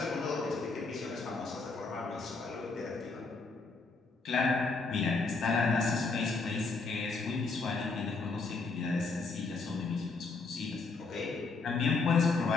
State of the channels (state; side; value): quieter; right; 4.1 dB